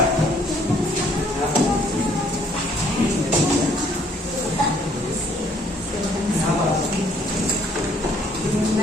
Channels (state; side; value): normal; both; correlation 0.62